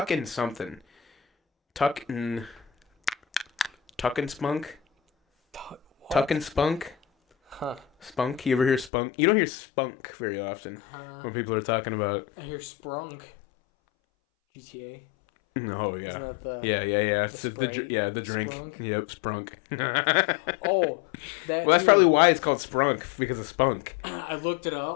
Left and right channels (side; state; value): right; drops out; at 8.9 s